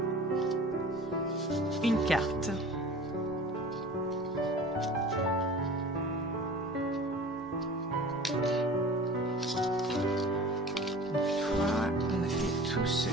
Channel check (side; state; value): both; normal; correlation 0.41